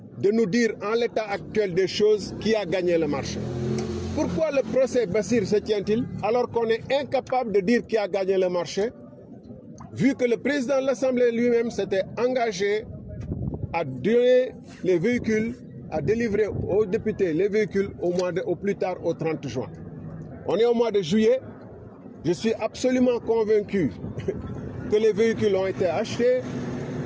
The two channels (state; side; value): identical; both; correlation 1.00